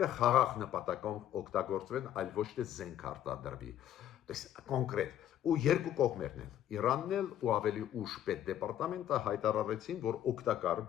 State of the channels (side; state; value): right; quieter; 11.3 dB